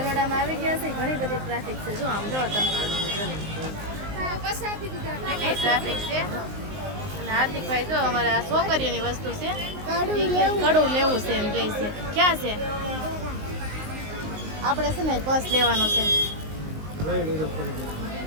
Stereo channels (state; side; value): late; left; 19 ms